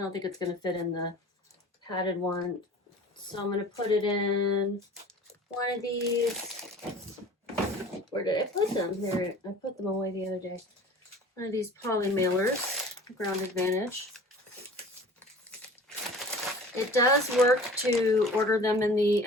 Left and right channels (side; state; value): both; normal; correlation 0.43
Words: think it's going to fit in the padded one, so I'm going to put it in one of these. Where did I put them? There, I put them away the other day. One of these poly mailers, Ground Advantage. It does work to order them in the